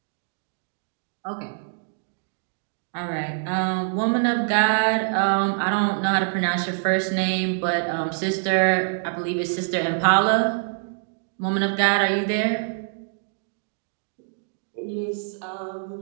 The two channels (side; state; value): left; silent; digital silence